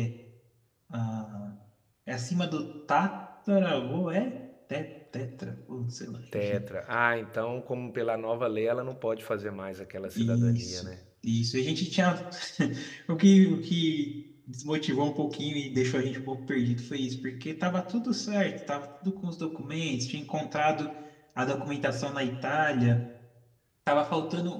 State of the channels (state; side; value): identical; both; correlation 1.00